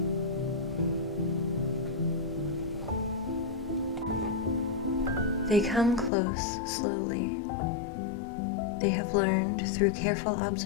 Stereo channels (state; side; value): drops out; right; at 6.1 s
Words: They come close slowly. They have learned through careful